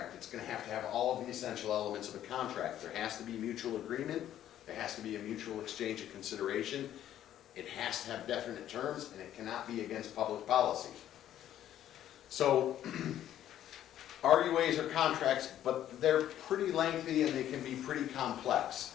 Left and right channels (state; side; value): quieter; right; 11.6 dB